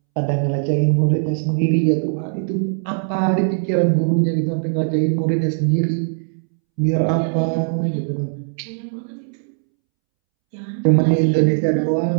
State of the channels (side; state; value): left; silent; 66 dB below the other